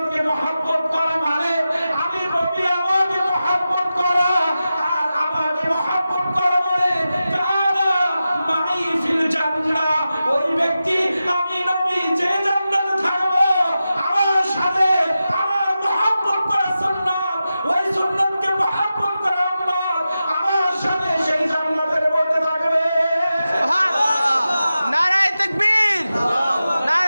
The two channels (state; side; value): inverted; both; correlation -0.92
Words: মহব্বত করা মানে আমি নবী আমাকে মহব্বত করা, আর আমাকে মহব্বত করা মানে কানা মাই ফিল জান্নাহ, ওই ব্যক্তি, আমি নবী যে জান্নাতে থাকবো, আমার সাথে আমার মহব্বত করা সুন্নাত, ওই সুন্নাতকে মহব্বত করা আমার সাথে সেই জান্নাতের মধ্যে থাকবে। সুবহানাল্লাহ। নারায়ে তাকবীর,